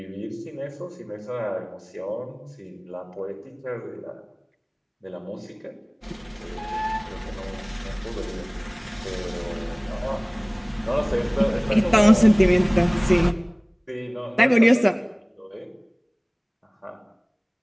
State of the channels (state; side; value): identical; both; correlation 1.00